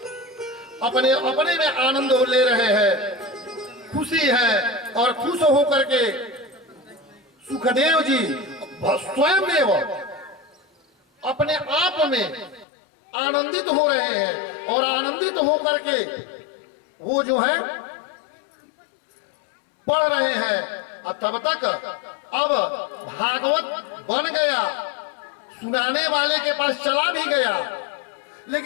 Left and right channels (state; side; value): drops out; right; at 12.7 s